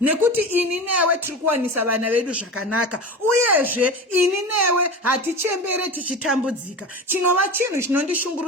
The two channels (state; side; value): normal; both; correlation 0.29